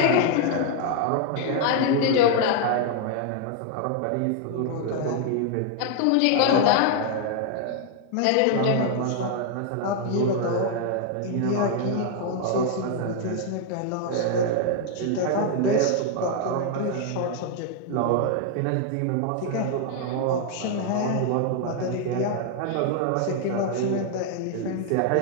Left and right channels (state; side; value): different; both; correlation 0.00